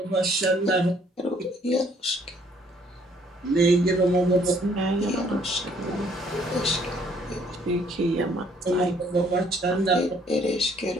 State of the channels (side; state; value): both; normal; correlation 0.63